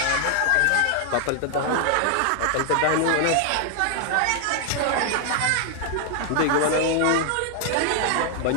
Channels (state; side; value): different; both; correlation 0.00